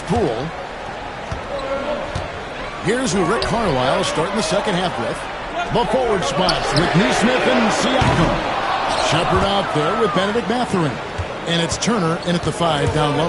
Poole. Here's who Rick Carlisle is starting the second half with. The forward spots with Neesmith and Siakam. Shepard out there with Benedict Mathurin. And it's Turner in at the 5 down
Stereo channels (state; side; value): identical; both; correlation 1.00